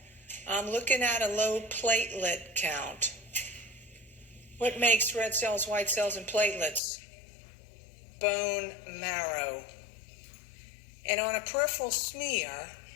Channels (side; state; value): right; drops out; at 6.8 s